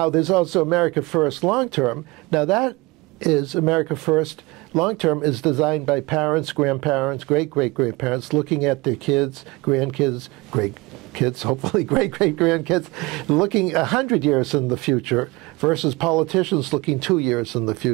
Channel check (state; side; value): quieter; left; 23.5 dB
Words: there's also America First long term. Now, that is America First. Long-term is designed by parents, grandparents, great-great-grandparents, looking at their kids, grandkids, great-kids, hopefully great-great-grandkids, looking 100 years in the future versus politicians looking 2 years in the